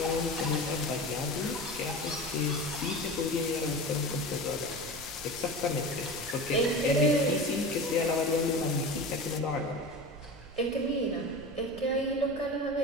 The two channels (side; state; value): right; noise; rumble, 18 dB below the sound